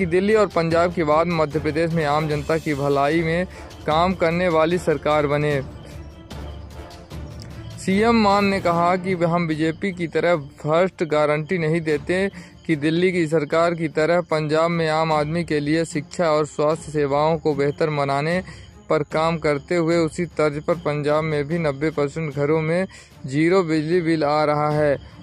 दिल्ली और पंजाब के बाद मध्य प्रदेश में आम जनता की भलाई में काम करने वाली सरकार बने। सीएम मान ने कहा कि हम बीजेपी की तरह फर्स्ट गारंटी नहीं देते कि दिल्ली की सरकार की तरह पंजाब में आम आदमी के लिए शिक्षा और स्वास्थ्य सेवाओं को बेहतर बनाने पर काम करते हुए उसी तर्ज पर पंजाब में भी 90% घरों में 0 बिजली बिल आ रहा है।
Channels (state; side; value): identical; both; correlation 1.00